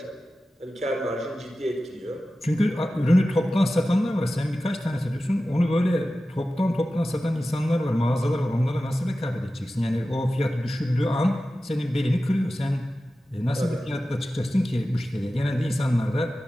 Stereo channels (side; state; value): both; normal; correlation 0.94